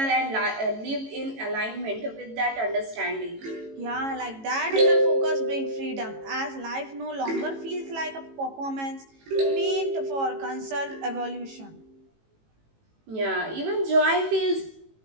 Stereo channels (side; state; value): left; late; 18 ms